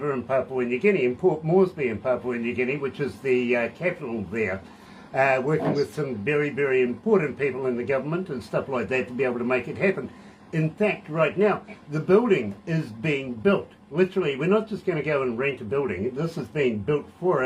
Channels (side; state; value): both; identical; correlation 1.00